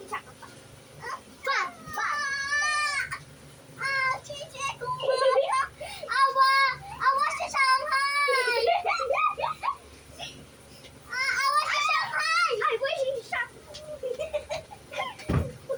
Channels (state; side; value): identical; both; correlation 1.00